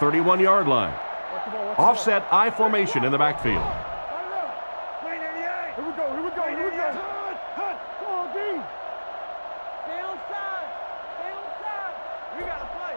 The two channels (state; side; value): inverted; both; correlation -1.00